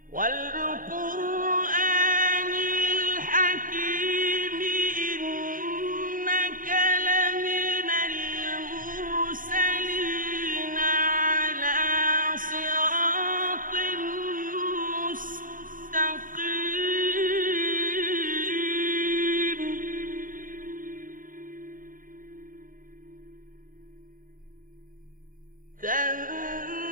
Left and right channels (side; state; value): left; late; 0.40 ms